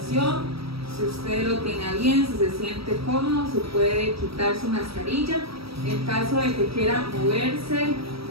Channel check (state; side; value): late; left; 0.76 ms